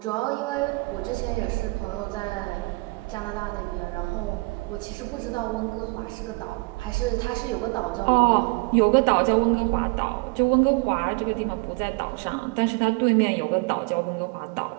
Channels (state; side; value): quieter; left; 27.7 dB